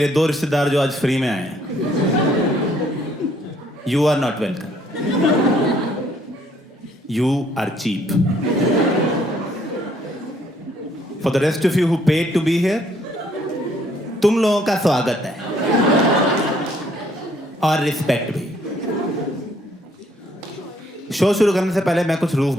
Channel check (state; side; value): normal; both; correlation 0.65